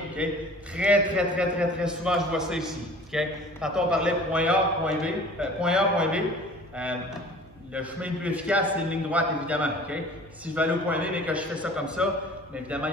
okay? Très souvent, je vois ça ici. Okay? Tantôt, on parlait point A, point B. Le chemin le plus efficace, c'est une ligne droite, évidemment. Okay? Si je vais aller au point B, mais que je fais ça comme ça, bien évidemment, il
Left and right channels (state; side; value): normal; both; correlation 0.46